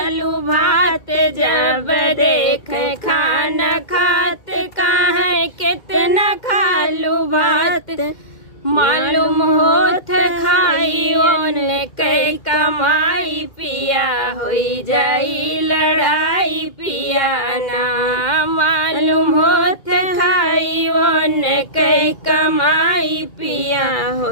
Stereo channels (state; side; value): late; right; 2.1 ms